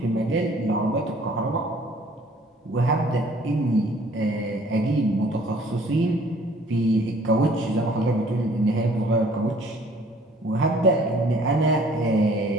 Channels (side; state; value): both; normal; correlation 0.56